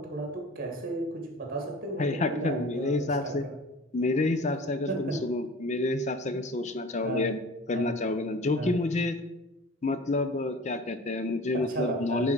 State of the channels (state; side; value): normal; both; correlation 0.41